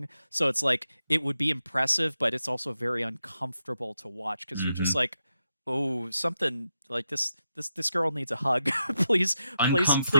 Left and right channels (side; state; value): both; inverted; correlation -0.86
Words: So it's like it would be impressive, but it's also very uncomfortable to watch because you're just mhm. like, oh, something like this girl needs a hug. Please